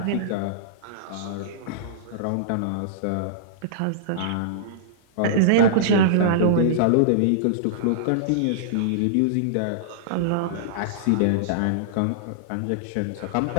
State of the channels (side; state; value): both; different; correlation -0.02